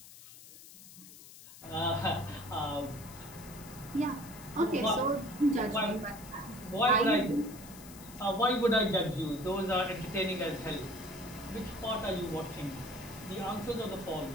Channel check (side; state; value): left; noise; hiss, 17 dB below the sound